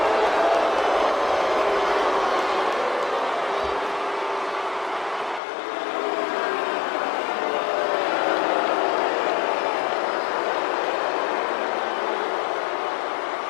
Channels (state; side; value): drops out; right; at 5.4 s